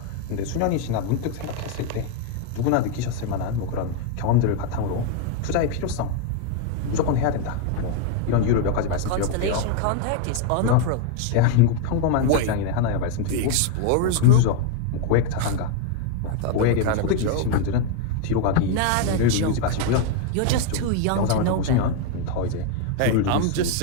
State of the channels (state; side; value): different; both; correlation 0.01